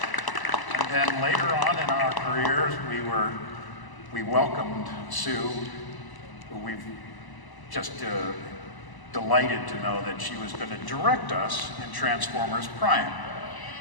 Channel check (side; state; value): right; late; 1.0 ms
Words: And then later on in our careers, we welcomed Sue, who we've just delighted to know that she was going to direct us in Transformers Prime.